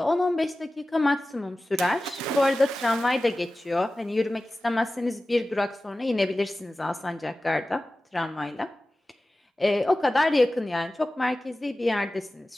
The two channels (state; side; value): normal; both; correlation 0.96